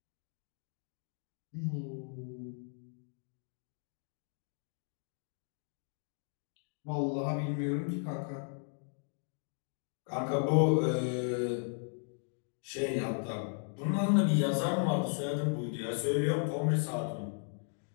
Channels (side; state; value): right; silent; 54 dB below the other